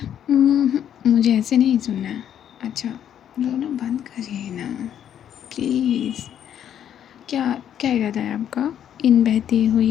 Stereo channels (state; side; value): quieter; right; 9.8 dB